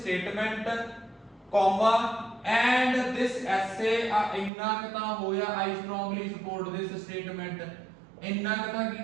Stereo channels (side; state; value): left; drops out; at 4.5 s